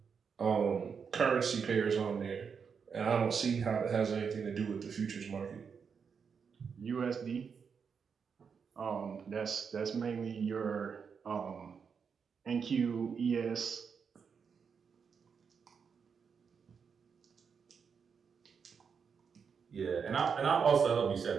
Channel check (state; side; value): quieter; left; 6.3 dB